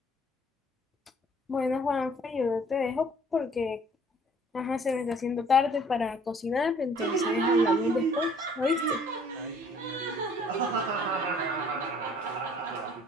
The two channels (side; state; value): both; normal; correlation 0.57